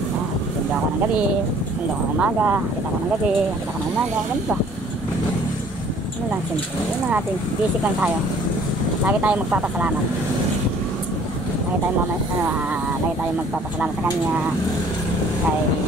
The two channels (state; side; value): normal; both; correlation 0.56